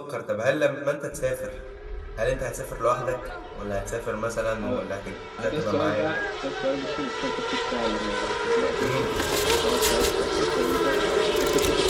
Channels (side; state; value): both; identical; correlation 1.00